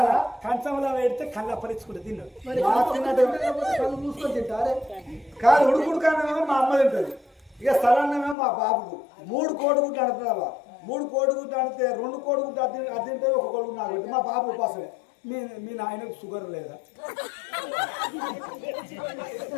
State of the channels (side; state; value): right; drops out; at 8.3 s